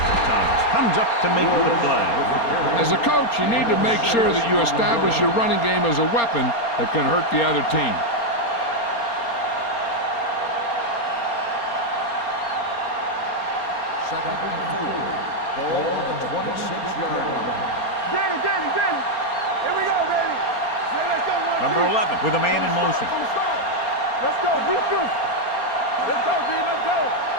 Thomas comes up to make the play. As a coach, you need to make sure that you establish your running game as a weapon that can hurt the other team. Second and 4. Ball on the 26-yard line. Danny. Here we go, baby. Let's go, Number 11 with a man in motion. Let's go. Let's go, D. Let's go.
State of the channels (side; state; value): right; late; 4.3 ms